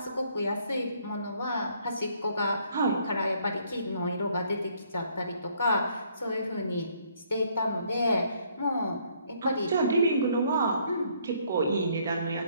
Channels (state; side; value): inverted; both; correlation -0.66